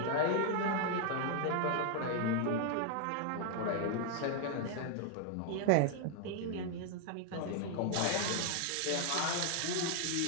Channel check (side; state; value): both; different; correlation 0.00